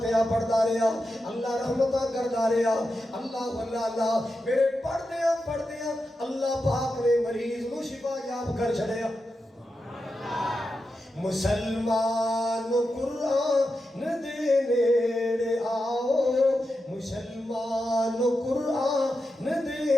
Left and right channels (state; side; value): normal; both; correlation 0.89